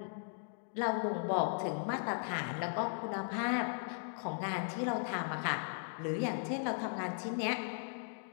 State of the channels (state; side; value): silent; right; digital silence